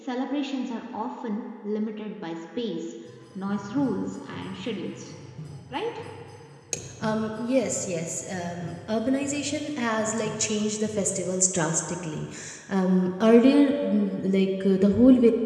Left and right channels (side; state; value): both; identical; correlation 1.00